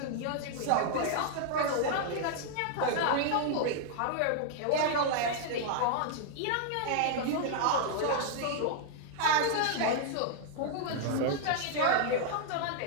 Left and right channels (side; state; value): both; different; correlation -0.01